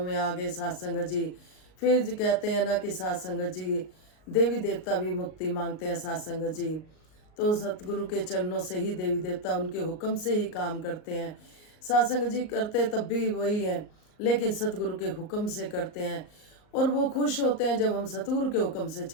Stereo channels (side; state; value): right; late; 38 ms